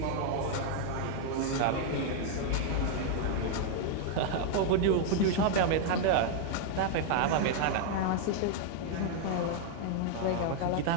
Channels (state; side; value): different; both; correlation 0.00